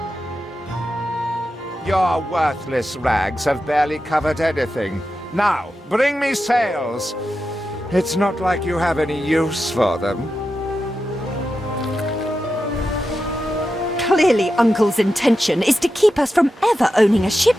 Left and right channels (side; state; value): both; normal; correlation 0.90